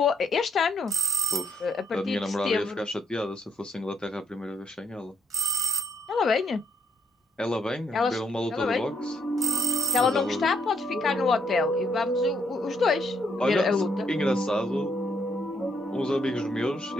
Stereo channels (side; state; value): both; normal; correlation 0.73